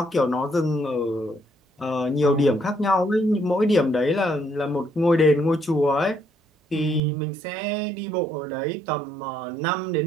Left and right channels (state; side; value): drops out; left; at 7.0 s